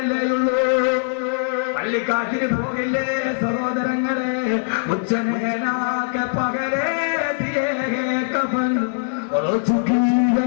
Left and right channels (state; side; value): silent; right; digital silence